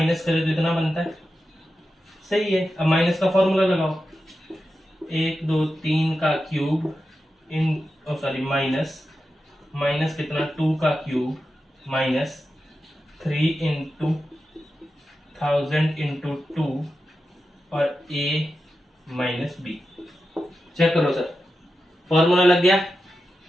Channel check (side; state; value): both; normal; correlation 0.90